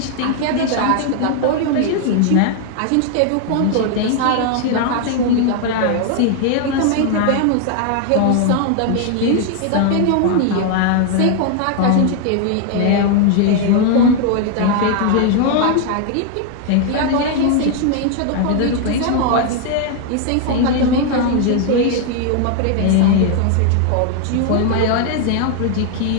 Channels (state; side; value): different; both; correlation 0.00